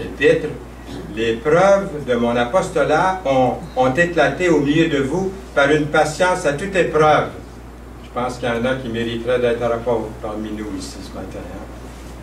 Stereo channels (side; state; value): both; identical; correlation 1.00